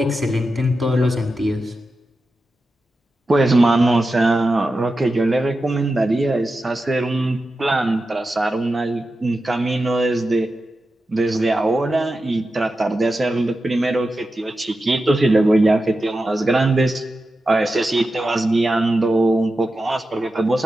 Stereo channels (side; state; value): both; normal; correlation 0.91